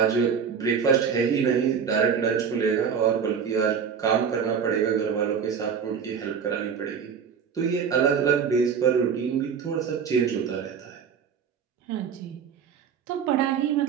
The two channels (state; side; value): quieter; left; 6.9 dB